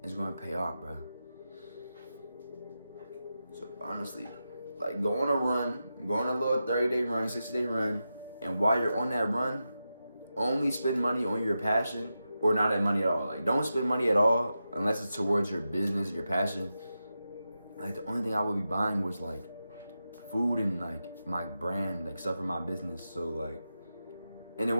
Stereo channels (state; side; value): inverted; both; correlation -0.90